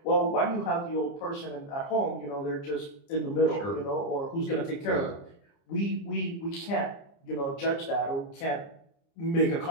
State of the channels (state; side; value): late; right; 29 ms